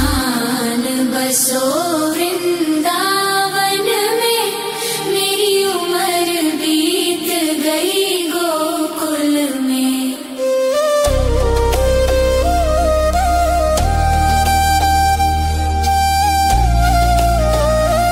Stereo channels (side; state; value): both; identical; correlation 1.00